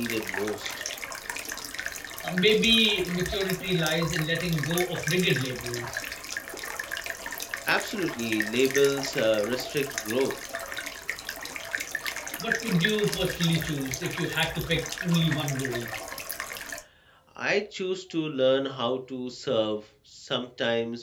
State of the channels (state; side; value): identical; both; correlation 1.00